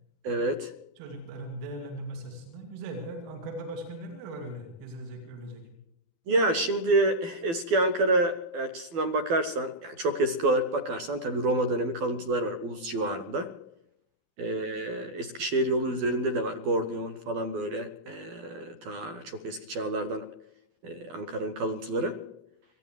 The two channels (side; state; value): left; late; 12 ms